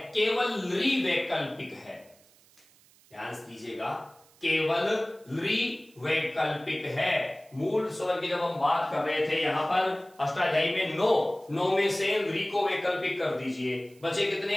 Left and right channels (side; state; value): right; noise; hiss, 29 dB below the sound